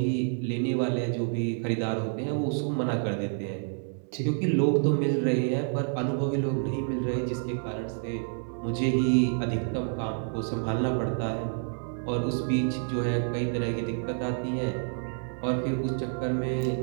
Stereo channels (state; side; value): silent; left; 59 dB below the other